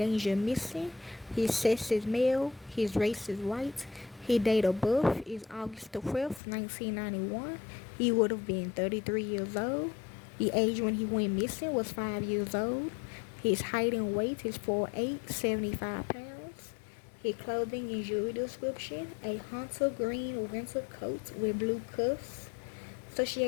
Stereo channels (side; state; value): right; drops out; at 6.4 s